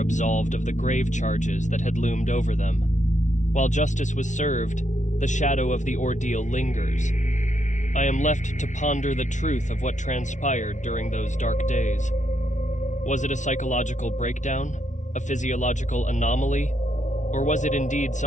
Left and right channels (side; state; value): right; late; 0.36 ms